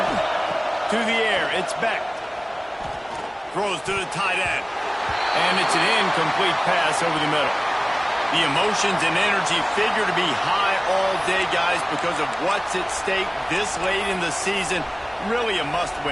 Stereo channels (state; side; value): identical; both; correlation 1.00